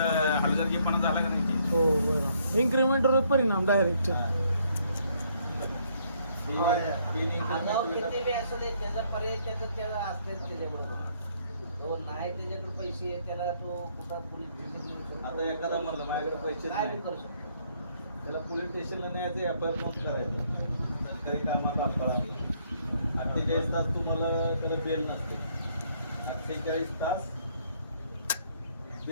हलगर्जीपणा झाला का नाही? हो बरोबर इन्क्रीमेंटवर परिणाम डायरेक्ट आगाव किती बी असू दे त्याचा पर्याय त्याला असतेच त्याच्याबरोबर. तो नाही त्याच्याकडे पैसे आहेत त्याला तो कुठं पोलीस स्टेशन आता एखादा म्हणलं माझ्याकडे पैसे काय नाही, बी करू शकतो. त्याला पोलीस स्टेशनला न्यायचं, एफआयआर नोंद करायचं. सरकारी कामात अडथळा 48 तास तुम्हाला त्याला बेल नसते. 48 तास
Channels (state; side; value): inverted; both; correlation -0.68